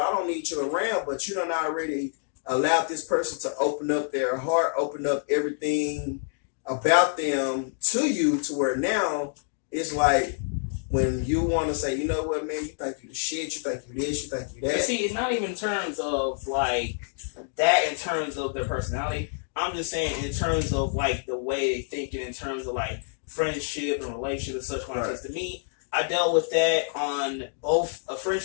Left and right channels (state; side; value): silent; right; digital silence